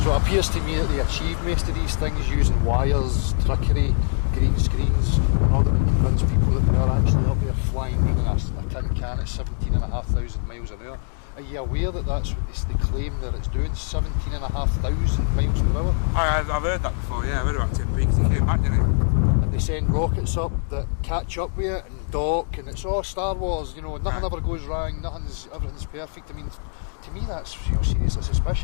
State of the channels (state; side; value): silent; right; 63 dB below the other